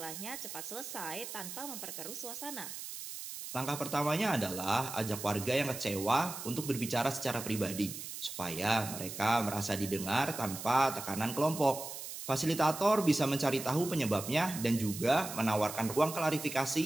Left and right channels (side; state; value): right; noise; hiss, 9 dB below the sound